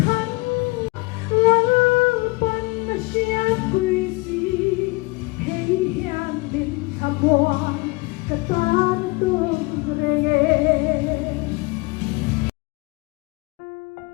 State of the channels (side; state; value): right; quieter; 25.7 dB